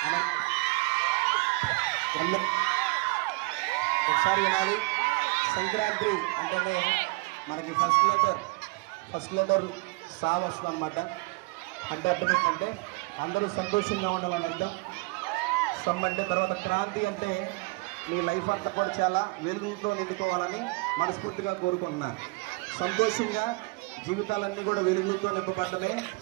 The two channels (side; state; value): left; quieter; 26.6 dB